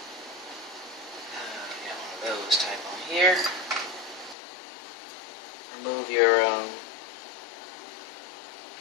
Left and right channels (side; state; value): right; drops out; at 4.4 s